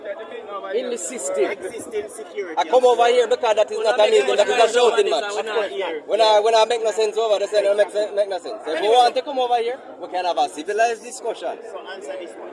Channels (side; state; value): both; identical; correlation 1.00